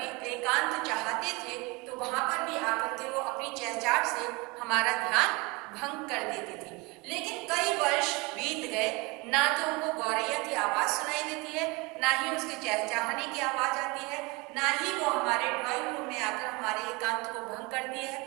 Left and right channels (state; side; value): quieter; left; 26.2 dB